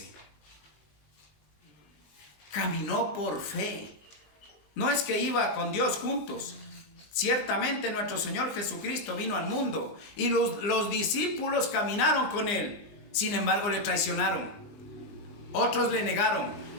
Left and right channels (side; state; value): right; late; 20 ms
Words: Caminó por fe. No es que iba con Dios juntos. Ciertamente nuestro Señor Jesucristo vino al mundo y los discípulos caminaron con él. Sin embargo, le traicionaron. Otros le negaron.